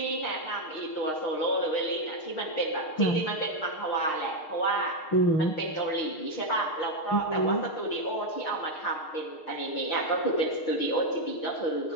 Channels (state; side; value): late; right; 6.5 ms